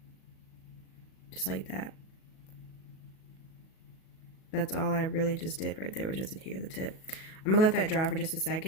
just like that. That's all I really just did right there, was just adhere the tip. I'm gonna let that dry for just a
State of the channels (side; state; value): right; late; 37 ms